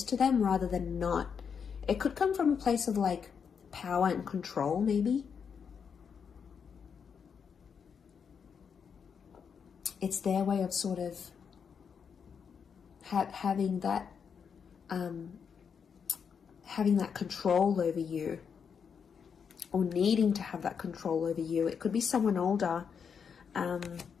to them rather than not. It could come from a place of like power and control, maybe. It's their way of sort of having that control over you, or needing to have that control over you. It could be someone older,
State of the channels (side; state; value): right; quieter; 6.7 dB